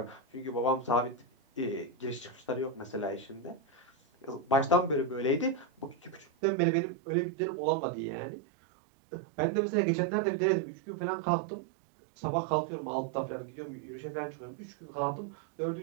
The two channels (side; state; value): left; drops out; at 6.2 s